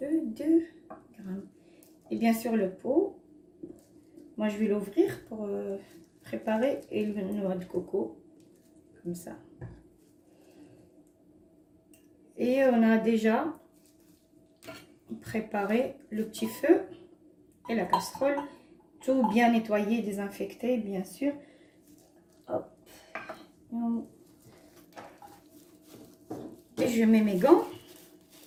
2 grammes. Et bien sûr le pot, moi je vais l'ouvrir pour préparer et le noix de coco, comme ça. Et on a déjà préparé le petit feu et la casserole, tout bien nettoyé, désinfecté bien sûr. Hop. Et je mets mes gants,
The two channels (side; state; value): both; identical; correlation 1.00